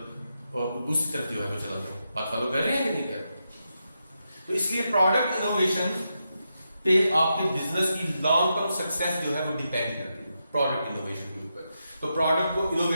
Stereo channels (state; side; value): inverted; both; correlation -0.85